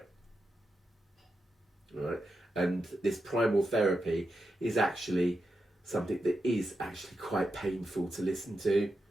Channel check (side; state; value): both; normal; correlation 0.87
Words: Right? And this primal therapy is actually something that is actually quite painful to listen to.